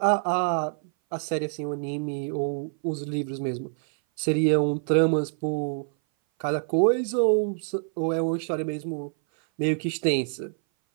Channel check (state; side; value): silent; left; 58 dB below the other